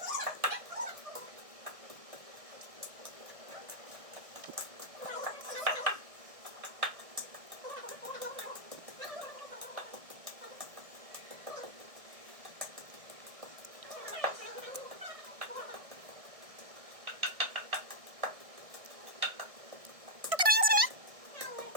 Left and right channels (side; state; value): left; late; 1.6 ms